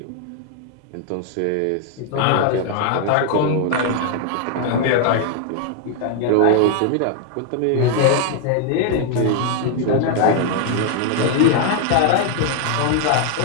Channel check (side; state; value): both; different; correlation 0.00